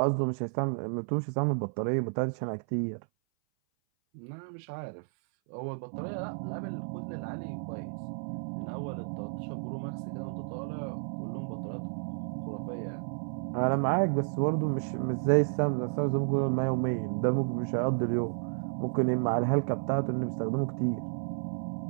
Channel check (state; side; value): silent; left; 57 dB below the other